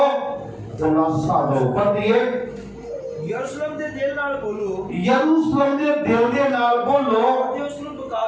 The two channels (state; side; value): identical; both; correlation 1.00